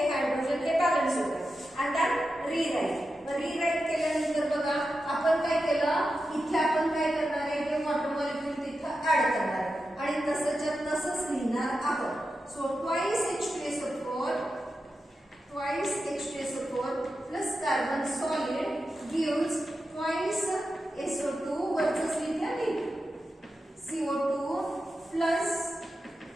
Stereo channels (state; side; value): normal; both; correlation 0.90